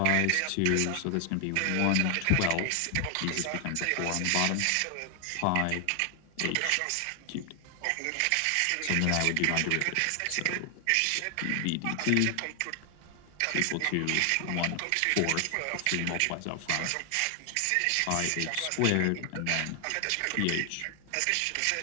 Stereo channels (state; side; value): different; both; correlation 0.00